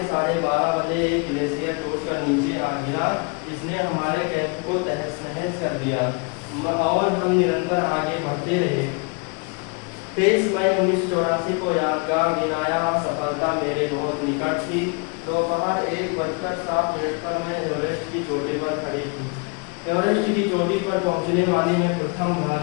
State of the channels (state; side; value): quieter; right; 33.3 dB